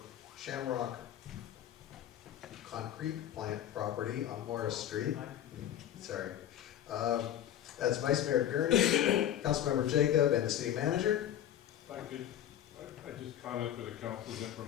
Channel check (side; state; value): right; quieter; 11.1 dB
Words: Shamrock concrete plant property on Morris Street. Sorry. That's Vice Mayor Gurney, Councilmember Jacob, and the City Manager. If I could, I just comment for the council's